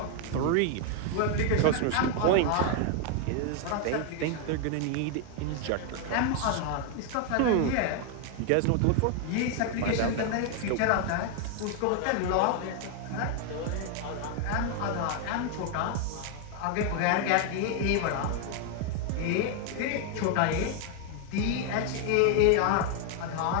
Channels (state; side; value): different; both; correlation 0.00